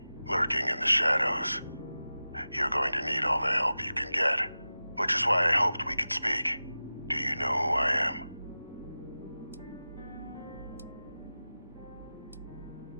lurking in the shadows. You're going to need all the help you can get, which is why I hoped we could speak. Do you know who I am?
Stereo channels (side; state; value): both; inverted; correlation -0.95